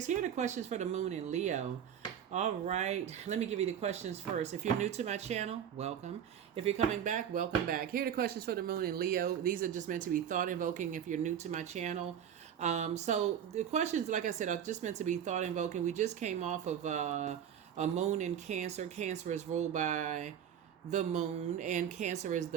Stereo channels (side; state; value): left; quieter; 9.0 dB